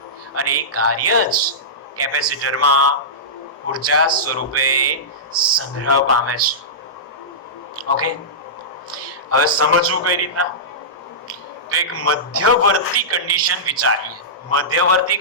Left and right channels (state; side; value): normal; both; correlation -0.16